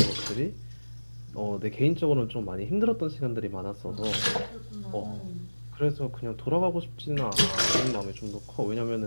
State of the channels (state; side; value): inverted; both; correlation -1.00